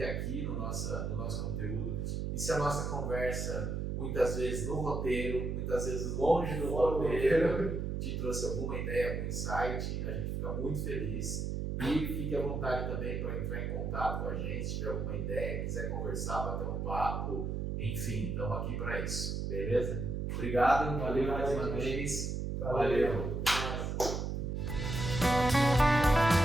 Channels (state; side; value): noise; right; hum, 2 dB below the sound